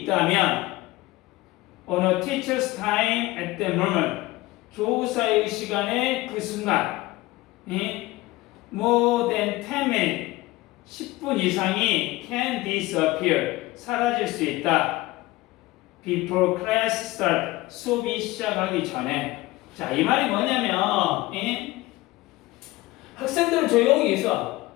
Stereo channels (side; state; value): right; quieter; 19.3 dB